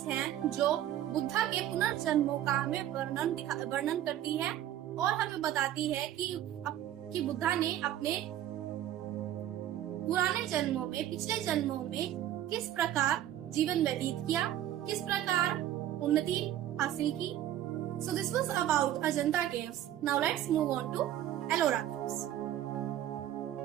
हैं जो बुद्धा के पुनर्जन्मों का हमें वर्णन करती है और हमें बताती है कि बुद्धा ने अपने पुराने जन्मों में, पिछले जन्मों में किस प्रकार जीवन व्यतीत किया, किस प्रकार उन्नति हासिल की। So this was about Ajanta caves. Now let's move on to Ellora caves.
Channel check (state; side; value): quieter; left; 12.2 dB